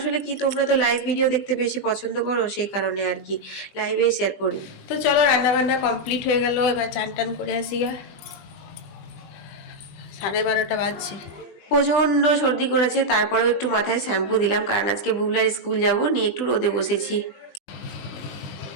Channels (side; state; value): right; late; 20 ms